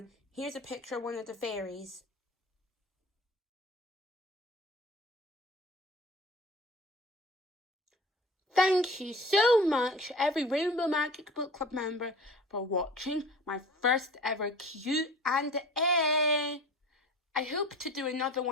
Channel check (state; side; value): normal; both; correlation 0.41